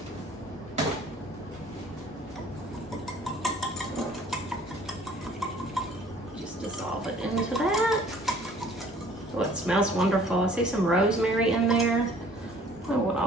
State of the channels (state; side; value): normal; both; correlation 0.54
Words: Into that. Oh, it smells wonderful. I see some rosemary in there. Oh, we'll